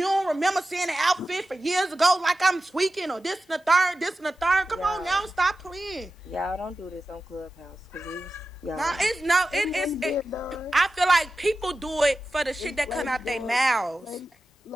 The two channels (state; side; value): normal; both; correlation 0.93